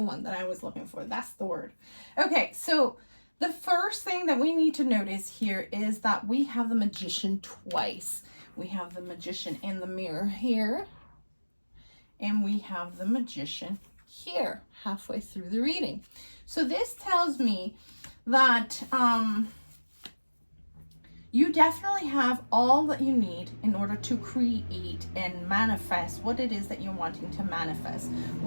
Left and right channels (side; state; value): both; inverted; correlation -1.00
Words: one that I was looking for. That's the word. Okay, so the first thing that we need to notice here is that we have the Magician twice. We have the Magician in the mirror here, and we have the Magician here, halfway through the reading. So this tells me that you definitely have all that you need in order to create and manifest what it is that you're wanting to manifest.